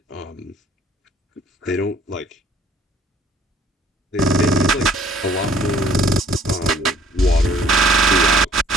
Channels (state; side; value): normal; both; correlation 0.58